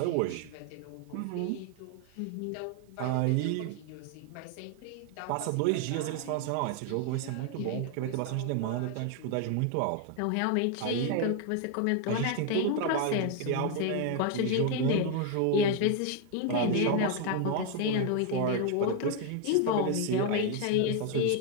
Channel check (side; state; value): both; different; correlation 0.01